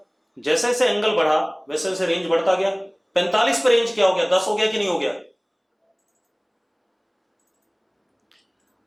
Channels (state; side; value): identical; both; correlation 1.00